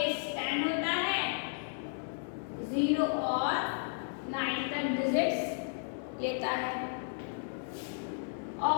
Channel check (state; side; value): silent; right; digital silence